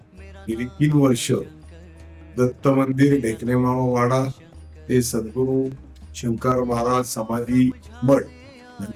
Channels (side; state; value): both; identical; correlation 1.00